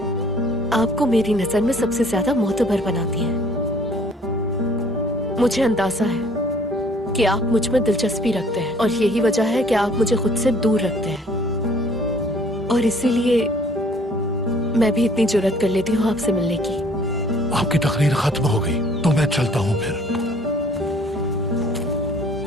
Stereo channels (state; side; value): normal; both; correlation 0.58